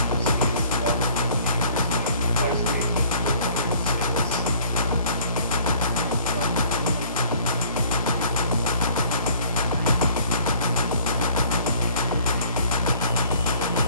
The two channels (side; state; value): both; inverted; correlation -0.54